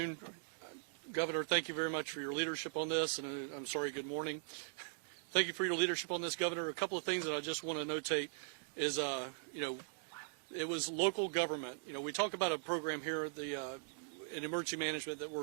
Governor, thank you very much for your leadership on this, and I'm sorry, good morning. Thank you for your leadership on this, Governor. A couple of things that I just want to notate is, it was local government. We talk about a program here at in emergency management that we're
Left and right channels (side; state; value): left; silent; digital silence